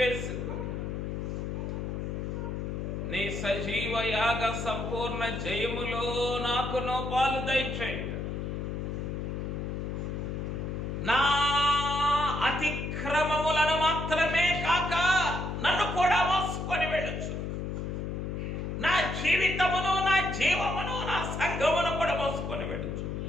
నీ సజీవయాగ సంపూర్ణ జయములో నాకును పాలు దయచేయండి. నా అతిక్రమములను మాత్రమే కాక నన్ను కూడా మోసుకొని వెళ్ళొచ్చు. నా జీవితమును, నా జీవమును, నా సంఘమును కూడా మోసుకొని వెళ్ళొచ్చు.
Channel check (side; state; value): left; noise; hum, 4 dB below the sound